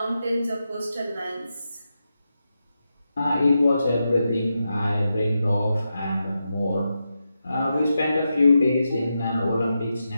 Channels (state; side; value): inverted; both; correlation -0.88